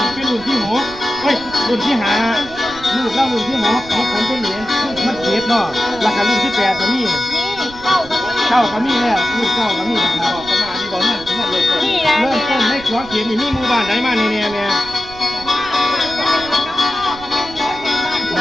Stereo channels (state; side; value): noise; right; rumble, 17 dB below the sound